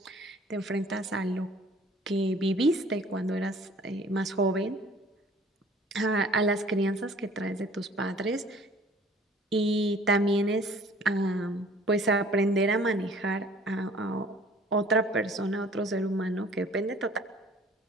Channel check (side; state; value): both; normal; correlation 0.52